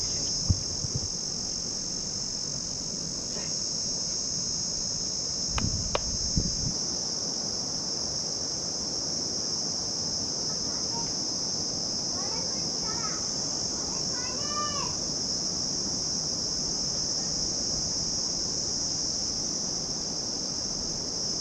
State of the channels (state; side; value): identical; both; correlation 1.00